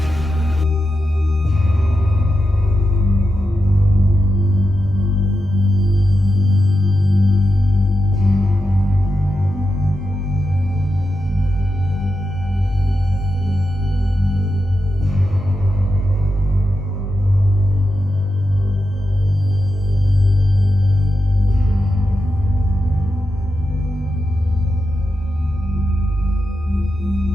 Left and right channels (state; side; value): normal; both; correlation 0.88